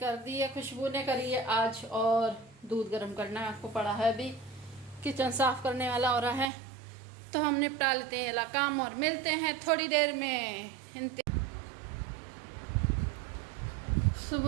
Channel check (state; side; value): drops out; left; at 6.5 s